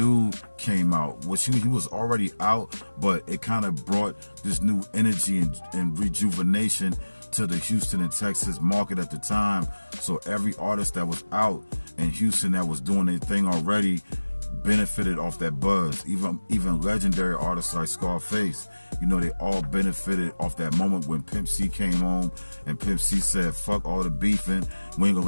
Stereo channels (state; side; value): inverted; both; correlation -1.00